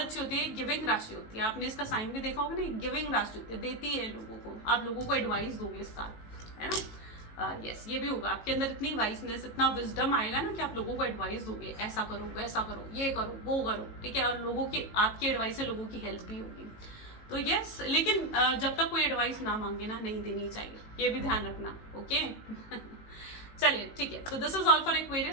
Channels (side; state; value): right; late; 18 ms